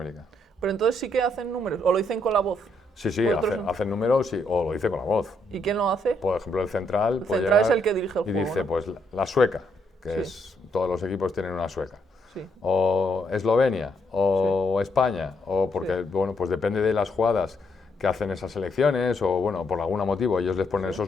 Pero entonces sí que hacen números, o lo dicen con la voz. Sí, hacen números o lo dice con la voz. ¿Y quién lo hace? Por ejemplo, el central. El central es el que dirige el juego. Y dice, ¿no? Pues la sueca, que es, todos los equipos tienen una sueca. O Eslovenia, o España, o porque, bueno, pues depende de las jugadas que hacen esas selecciones, o bueno, por algún motivo ellos les ponen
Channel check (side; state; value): both; normal; correlation 0.75